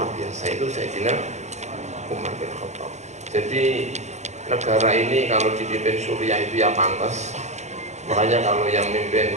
biasa, itu Sayyidina Umar bin Khattab. Jadi negara ini kalau dipimpin Suriah itu ya pantas. Makanya kalau yang mimpin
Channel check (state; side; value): late; left; 0.33 ms